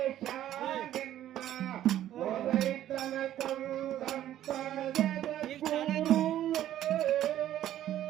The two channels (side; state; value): left; quieter; 12.3 dB